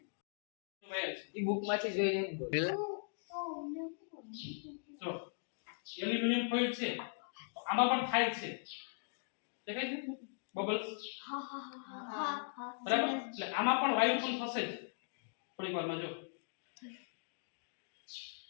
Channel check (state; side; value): silent; right; digital silence